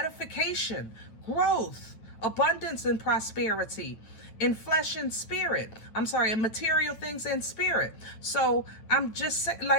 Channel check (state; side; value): late; right; 9.1 ms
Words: growth, abundance and prosperity in flesh and spirit. I'm sorry, in material things and spirit. So I'm just saying,